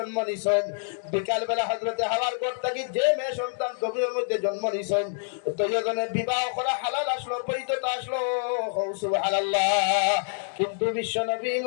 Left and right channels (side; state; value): right; silent; digital silence